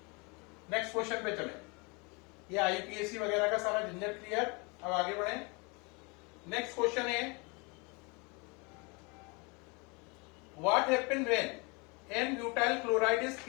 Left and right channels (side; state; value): right; quieter; 29.8 dB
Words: नेक्स्ट क्वेश्चन पे चले, ये आईपीएसी वगैरह का सारा झंझट क्लियर। अब आगे बढ़े, नेक्स्ट क्वेश्चन है, what happen when N butyl chloride is